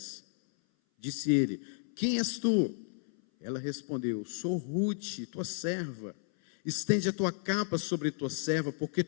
Disse ele: quem és tu? Ela respondeu: sou Ruth, tua serva. Estende a tua capa sobre tua serva, porque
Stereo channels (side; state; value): right; silent; 56 dB below the other